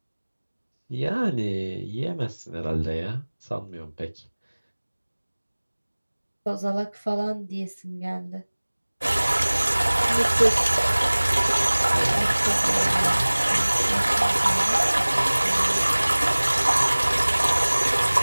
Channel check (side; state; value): both; inverted; correlation -1.00